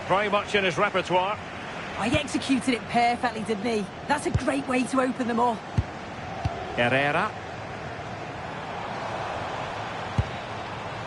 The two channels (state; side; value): identical; both; correlation 1.00